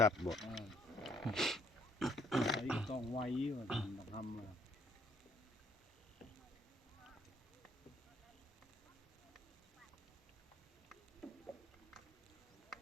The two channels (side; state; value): both; normal; correlation 0.65